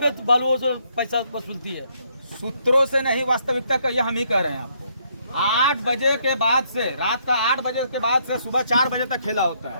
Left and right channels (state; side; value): inverted; both; correlation -0.70